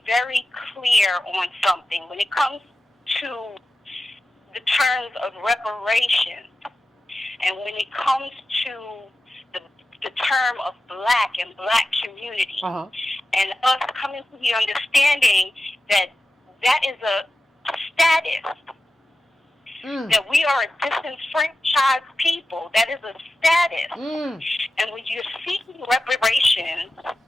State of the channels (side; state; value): both; normal; correlation 0.93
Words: very clear on something. When it comes to the terms of reparations, and when it comes to the term of black and black community, and us coming to the understanding that that is a status, that we are a disenfranchised people. That is a status. And when you're seeking reparations,